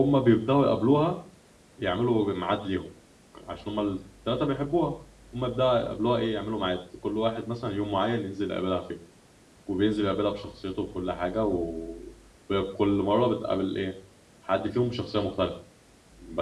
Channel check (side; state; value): both; identical; correlation 1.00